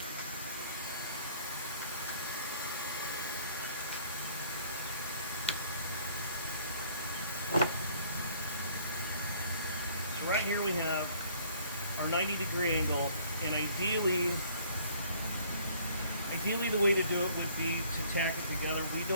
So right here we have our 90-degree angle, and ideally the way to do it would be to tack it together. We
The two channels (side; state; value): both; inverted; correlation -0.58